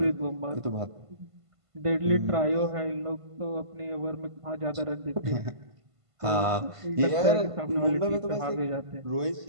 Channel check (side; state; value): left; late; 1.5 ms